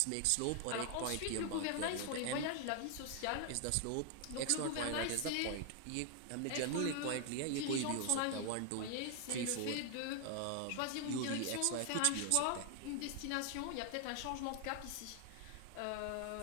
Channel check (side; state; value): both; different; correlation 0.00